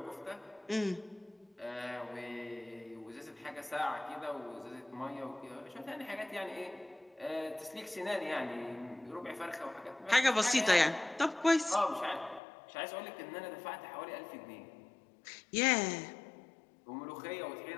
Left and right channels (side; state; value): right; drops out; at 12.4 s